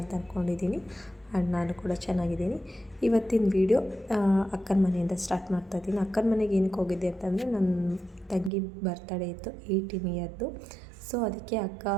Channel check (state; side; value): drops out; left; at 8.5 s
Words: ಅಂತ ಅಂದ್ಕೊಂಡಿದ್ದೀನಿ. ಆ್ಯಂಡ್ ನಾನು ಕೂಡ ಚೆನ್ನಾಗಿದ್ದೀನಿ. ಇವತ್ತಿನ ವಿಡಿಯೋ ಅಕ್ಕನ ಮನೆಯಿಂದ ಸ್ಟಾರ್ಟ್ ಮಾಡ್ತಾಯಿದ್ದೀನಿ. ಅಕ್ಕನ ಮನೆಗೆ ಏನಕ್ಕೆ ಹೋಗಿದ್ದೆ ಅಂತಂದರೆ ನನ್ನ ತಂಗಿ ಬರ್ತಡೇ ಇತ್ತು, 18 ಇಯರ್ದು. ಸೊ ಅದಕ್ಕೆ ಅಕ್ಕ